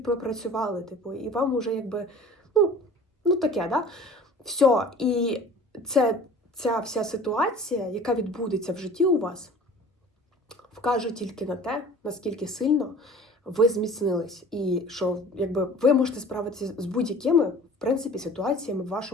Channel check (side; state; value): both; normal; correlation 0.44